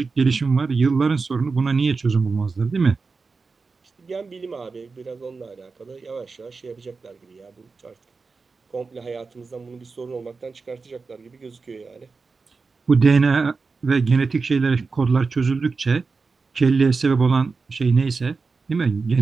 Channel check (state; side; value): quieter; left; 4.4 dB